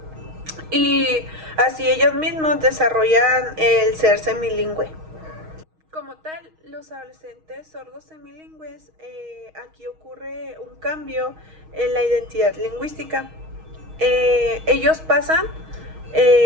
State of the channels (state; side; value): late; left; 6.4 ms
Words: y así ellos mismos desarrollan el ser semilingüe. Como tal, los adolescentes sordos semilingües, aquí ocurre un cambio en la identidad lingüística. Ellos pasan